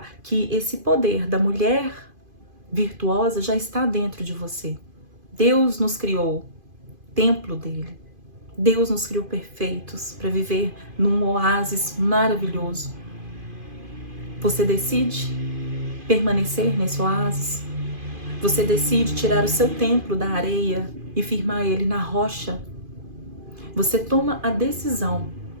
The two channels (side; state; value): left; late; 2.5 ms